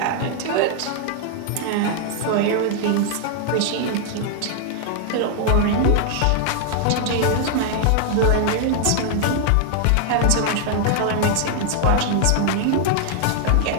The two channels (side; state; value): both; different; correlation 0.00